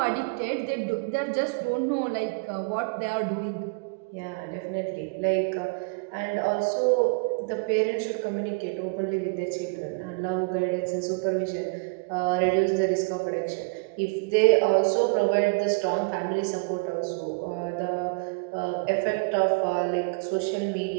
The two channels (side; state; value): left; quieter; 32.9 dB